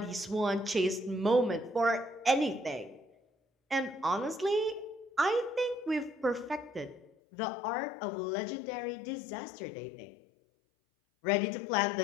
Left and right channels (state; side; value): drops out; right; at 7.1 s